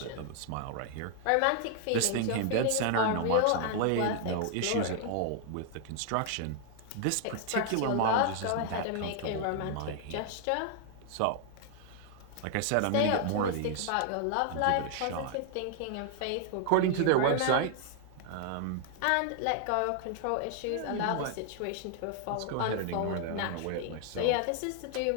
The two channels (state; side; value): different; both; correlation 0.00